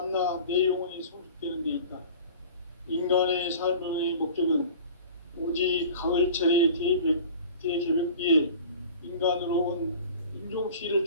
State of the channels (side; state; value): both; inverted; correlation -0.42